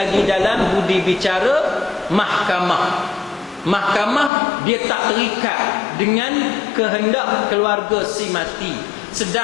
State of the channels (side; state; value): right; drops out; at 4.3 s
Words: dalam budi bicara mahkamah. Mahkamah dia tak terikat dengan kehendak keluarga si mati.